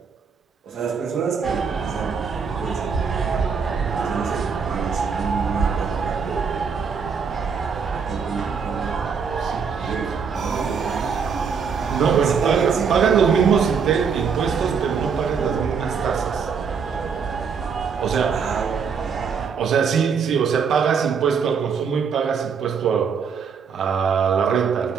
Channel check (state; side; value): quieter; left; 6.1 dB